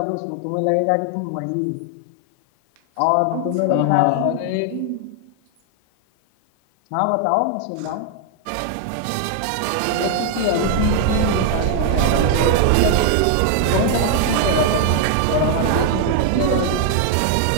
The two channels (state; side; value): different; both; correlation 0.00